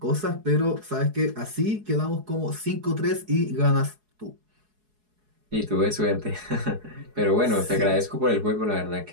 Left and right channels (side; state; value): left; late; 4.7 ms